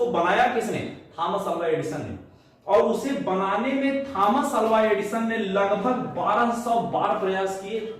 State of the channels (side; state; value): both; identical; correlation 1.00